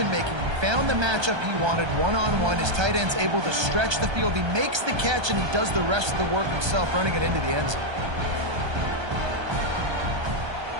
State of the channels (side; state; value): left; late; 1.3 ms